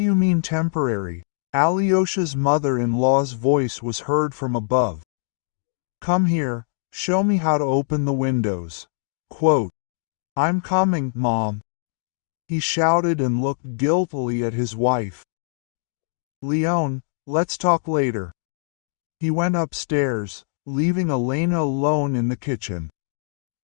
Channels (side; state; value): right; silent; digital silence